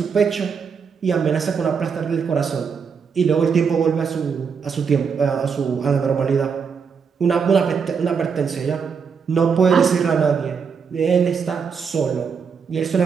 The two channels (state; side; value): quieter; left; 6.1 dB